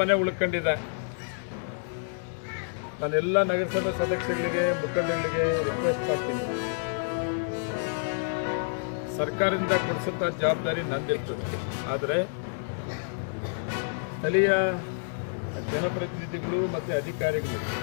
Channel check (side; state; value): right; silent; digital silence